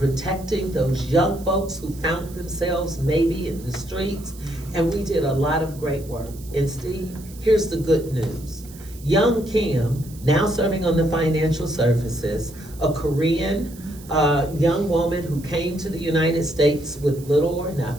those young folks who found themselves maybe in the streets, and we did a lot of great work. And Steve, here's the good news. Young Kim, now serving on the Financial Services, a Korean young woman who came to the United States with little or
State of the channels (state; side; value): noise; right; hiss, 20 dB below the sound